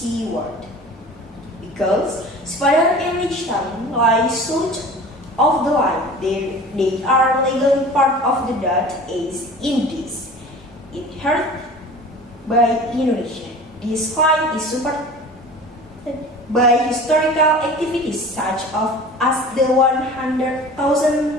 Because Sipadan and Lichutan lie south of the line, they are legally part of the Dutch East Indies, inherited by Indonesia. This line is supported by historical activities such as the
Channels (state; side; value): normal; both; correlation 0.40